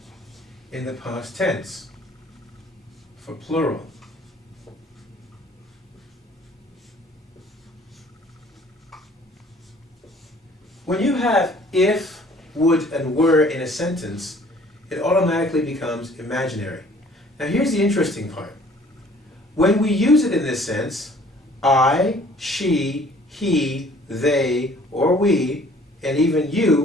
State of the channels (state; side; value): normal; both; correlation 0.55